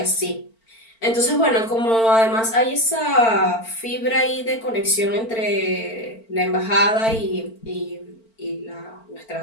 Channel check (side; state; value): right; late; 4.5 ms